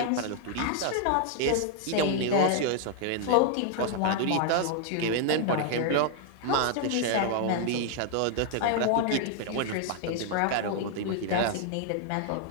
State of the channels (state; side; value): different; both; correlation 0.00